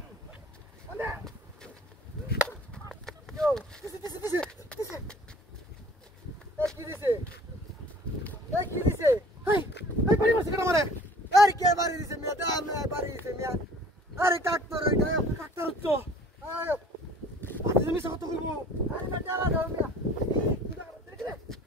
কান্দে yo দিছে কি দিছে হেই হেই বাড়ি মারছে কেন মারে আরে কে বাড়ি দিছে মিয়া দা আমি বাড়ি দিছে মিয়া আরে কাটতর ওইটা ডাক্তার হচ্ছ আয় আজ আমি কত করব আরে না চালা দাও মিয়া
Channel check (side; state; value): both; normal; correlation 0.50